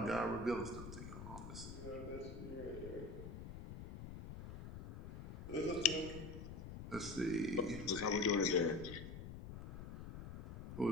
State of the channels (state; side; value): noise; left; rumble, 10 dB below the sound